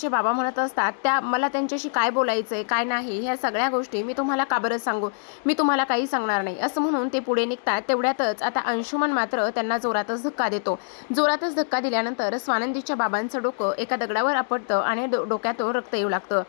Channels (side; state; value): right; silent; digital silence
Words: बाबा म्हणत असतात त्या मला त्यांच्याशी काय बोलायचं आहे काय नाही ह्या सगळ्या गोष्टी मी तुम्हाला का बरं सांगू, मी तुम्हाला काही सांगणार नाही असं म्हणून ते पुढे निघतात. तेवढ्यातच आता अंशुमन मात्र त्यांना जोरातच धक्का देतो. जोरातच धक्का दिल्यानंतर स्वानंदीच्या बाबांचं डोकं एका दगडावर आपटतं आणि डोक्यातून रक्त येऊ लागतं.